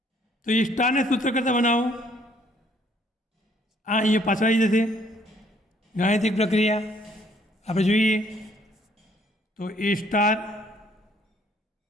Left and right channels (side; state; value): both; normal; correlation 0.63